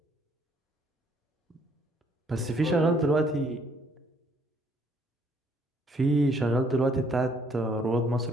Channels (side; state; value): both; normal; correlation 0.65